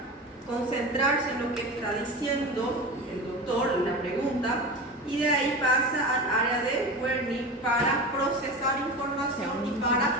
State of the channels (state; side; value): normal; both; correlation 0.28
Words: concentrarse en lo que está diciendo el doctor, la pregunta, y de ahí pasa al área de Wernicke para procesar información y